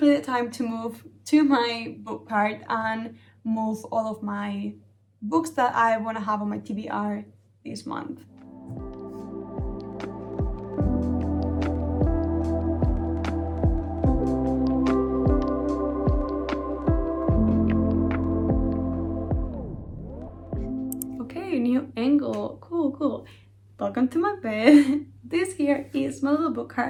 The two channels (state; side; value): identical; both; correlation 1.00